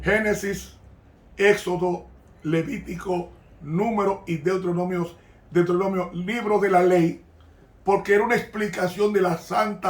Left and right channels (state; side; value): identical; both; correlation 1.00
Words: Génesis, Éxodo, Levítico, Número y Deuteronomio, libro de la ley, porque era una explicación de la